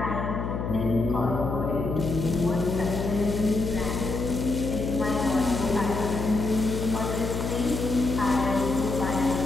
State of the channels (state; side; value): noise; left; hum, 3 dB below the sound